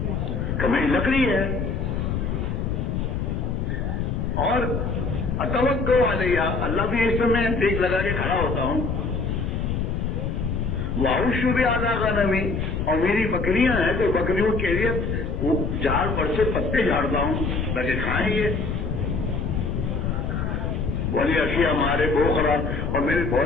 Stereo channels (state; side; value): noise; left; rumble, 1 dB below the sound